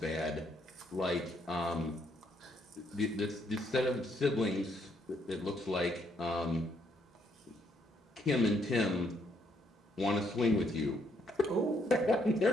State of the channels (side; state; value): both; normal; correlation 0.72